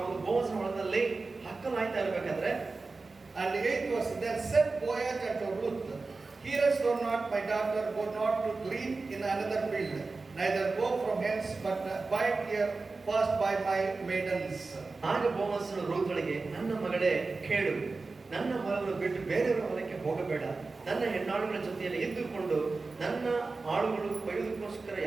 ಬೋವಾಜನ ಹೊಲದಲ್ಲಿ ಹಕ್ಕಲಾಯ್ತಾ ಇರಬೇಕಾದ್ರೆ, and 8 verse, then said Boaz unto Ruth, hearest thou not, my daughter, go not to glean in another field, neither go from hence, but bide here fast by my maidens. ಆಗ ಬೋವಾಜನು ರೂತುಳಿಗೆ, ನನ್ನ ಮಗಳೇ ಕೇಳು, ನನ್ನ ಹೊಲವನ್ನು ಬಿಟ್ಟು ಬೇರೆಯವರ ಹೊಲಕ್ಕೆ ಹೋಗಬೇಡ, ನನ್ನ ಹೆಣ್ಣಾಳುಗಳ ಜೊತೆಯಲ್ಲಿ ಇದ್ದುಕೊಂಡು ನನ್ನ ಆಳುಗಳು ಕೊಯ್ಯುವುದಕ್ಕೋಸ್ಕರ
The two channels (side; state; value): left; quieter; 3.8 dB